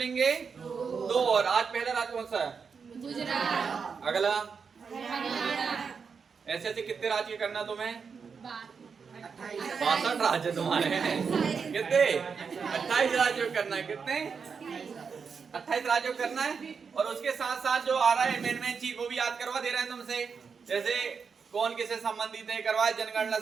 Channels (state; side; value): quieter; left; 5.8 dB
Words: 2 और। आज पहला राज्य कौन सा है? गुजरात। अगला हरियाणा। ऐसे ऐसे कितने राज्य करना तुम्हें? 62 राज्य तुम्हारे हैं। कितने? 28 राज्यों करना है। कितने? 28 राज्यों करना है। और उसके साथ साथ जो आ रहा है मेन चीज वो भी याद करवा दे रहे हैं तुमसे। जैसे कौन किससे संबंधित है करवा, जनगणना